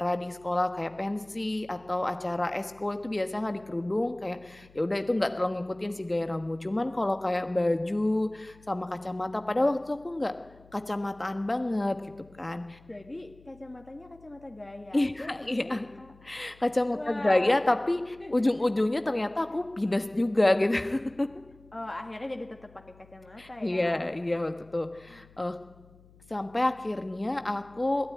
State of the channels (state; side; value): noise; left; hum, 26 dB below the sound